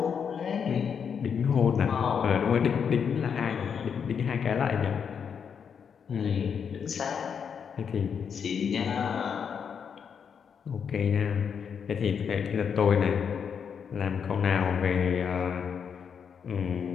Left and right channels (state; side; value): quieter; right; 7.0 dB